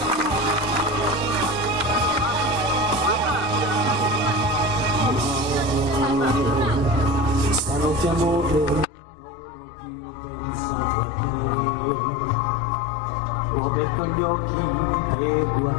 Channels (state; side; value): drops out; right; at 8.8 s